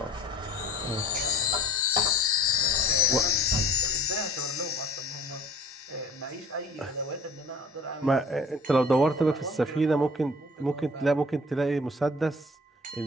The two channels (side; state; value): both; normal; correlation 0.47